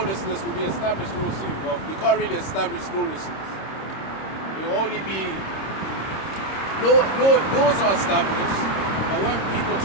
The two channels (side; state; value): right; late; 26 ms